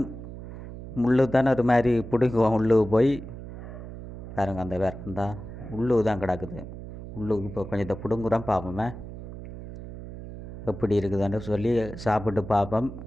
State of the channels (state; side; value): noise; right; hum, 11 dB below the sound